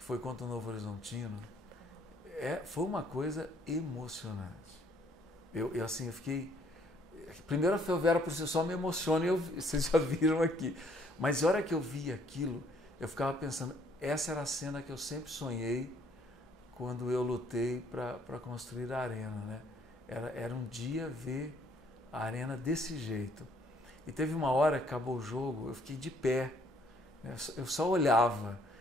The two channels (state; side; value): normal; both; correlation 0.65